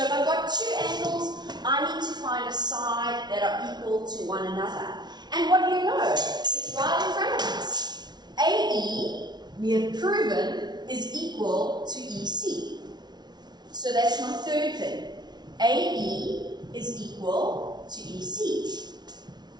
if I've got two angles, I need to find a side that are equal to one another. And what do you know? It's right in front of us. AE, we have proven, is equal to EC. So that's my third thing. AE is equal to EC.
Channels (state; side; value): late; left; 0.20 ms